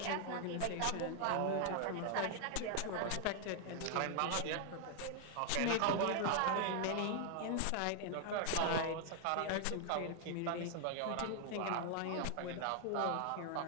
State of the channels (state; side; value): different; both; correlation 0.00